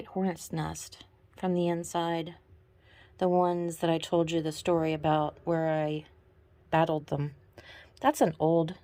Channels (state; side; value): identical; both; correlation 1.00